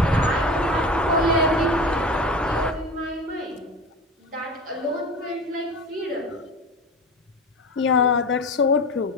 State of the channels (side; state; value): both; normal; correlation 0.31